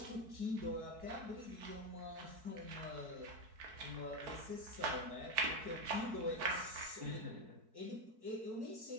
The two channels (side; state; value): left; late; 4.6 ms